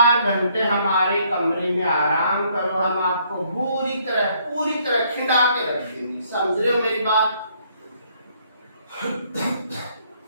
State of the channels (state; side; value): inverted; both; correlation -0.67